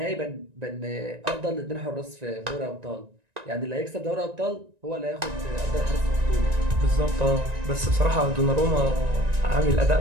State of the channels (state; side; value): late; left; 1.9 ms